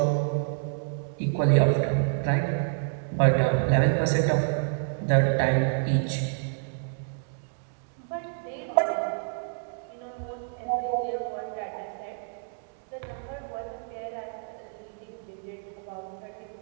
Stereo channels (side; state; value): left; silent; digital silence